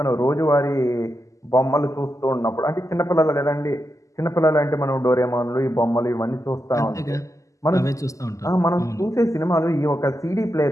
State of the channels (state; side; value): late; right; 0.16 ms